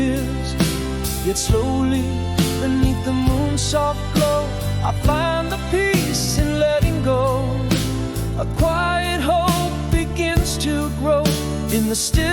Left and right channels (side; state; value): both; identical; correlation 1.00